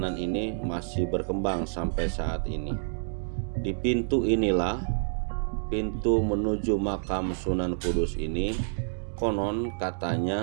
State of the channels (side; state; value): left; silent; digital silence